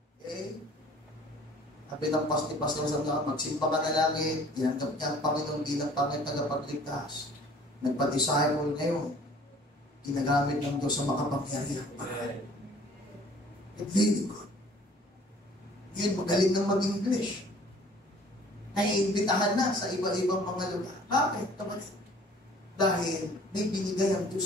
sabi ng Pastor Sam na magsimba ka na lagi, tinanggap niya ang Panginoon bilang Panginoon tagapagligtas. Nagpa-disciple ngayon, ginagamit ng Diyos sa makapangyarihan. It's really good. Yun, magaling nang mag-English. Naiimbitahan na sa iba-ibang mga lugar. Bakit? Dahil may binigay ang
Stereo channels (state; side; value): normal; both; correlation 0.52